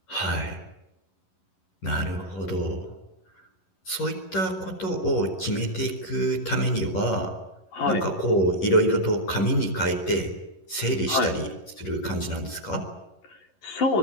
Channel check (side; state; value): right; late; 11 ms